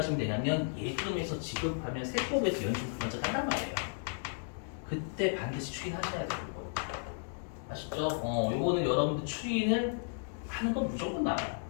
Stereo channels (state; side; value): silent; right; 55 dB below the other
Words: 되냐면 예금에서 지급하면 세법에서 연충 먼저 한단 말이에요. 그때 반드시 추인하셔야 돼요. 이거. 아시죠? 요거는 여러분들 추인을 하는 건 무조건 나와요.